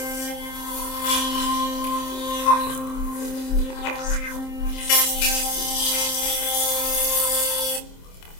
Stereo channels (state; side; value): late; right; 27 ms